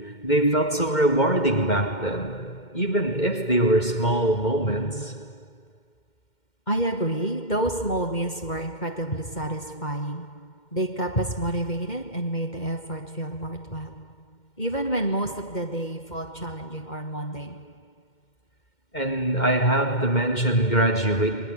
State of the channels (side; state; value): right; late; 2.1 ms